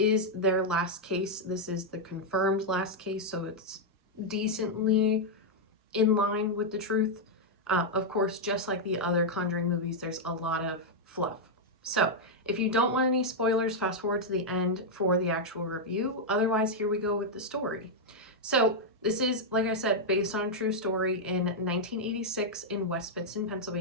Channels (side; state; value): both; normal; correlation -0.03